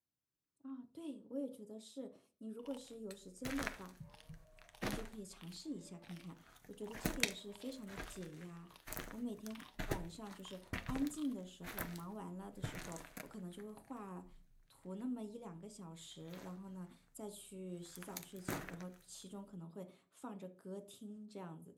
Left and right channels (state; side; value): identical; both; correlation 1.00